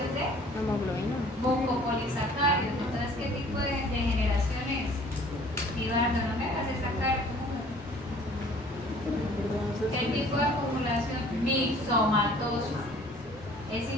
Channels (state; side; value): normal; both; correlation 0.52